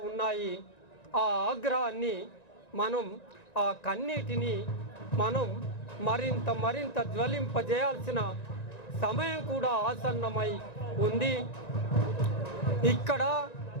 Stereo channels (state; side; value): late; right; 1.9 ms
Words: ఉన్నాయి. ఆ ఆగ్రహాన్ని మనం ఆ కన్నీటిని మనం మరింత జ్వలింపజేయాల్సిన సమయం కూడా ఆసన్నమై ఉంది. ఇక్కడ